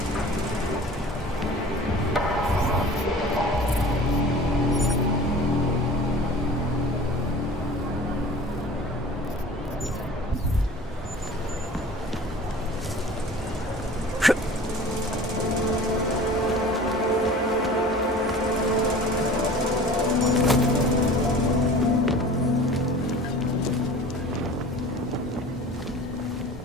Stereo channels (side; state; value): both; normal; correlation 0.42